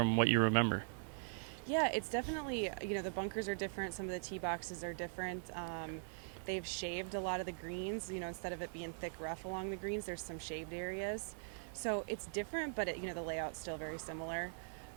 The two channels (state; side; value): silent; left; 50 dB below the other